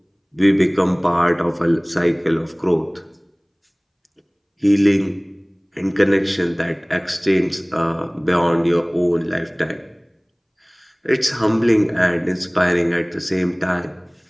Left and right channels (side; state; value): both; identical; correlation 1.00